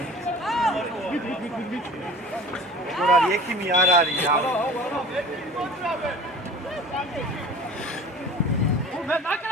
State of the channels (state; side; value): normal; both; correlation 0.42